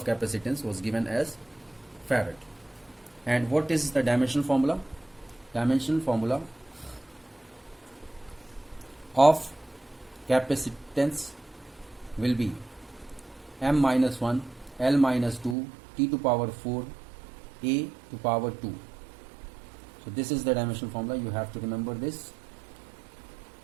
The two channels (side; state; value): left; drops out; at 15.6 s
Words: capacitance was given as Farad. And what is the dimensional formula? Dimensional formula of capacitance will be m minus 1 L minus 2 T to power 4 A to power 2. So this is the dimensional formula. You have to remember this.